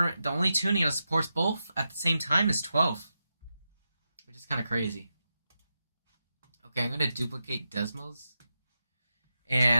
that supports both at the same time is 12, which is kind of crazy. Okay, I'm gonna duplicate Desmos,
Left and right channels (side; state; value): both; inverted; correlation -0.88